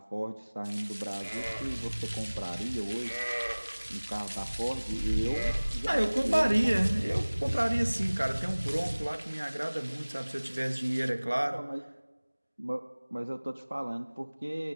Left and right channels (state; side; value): inverted; both; correlation -1.00